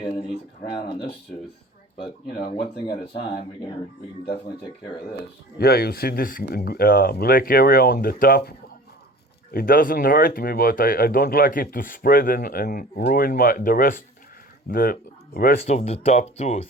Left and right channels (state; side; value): normal; both; correlation 0.41